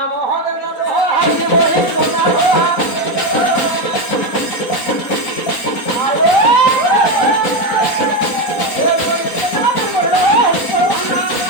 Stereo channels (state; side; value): late; right; 4.1 ms